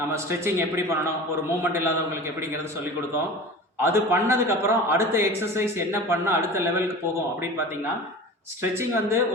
ஸ்ட்ரெச்சிங் எப்படி பண்ணணும், ஒரு மூமெண்ட் இல்லாதவங்களுக்கு எப்படிங்கிறது சொல்லி கொடுத்தோம். அது பண்ணதுக்கப்புறம் அடுத்த எக்ஸசைஸ் என்ன பண்ணால் அடுத்த லெவலுக்கு போகும் அப்படின்னு பார்த்தீங்கன்னா, ஸ்ட்ரெச்சிங் வந்து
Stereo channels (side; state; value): both; normal; correlation 0.36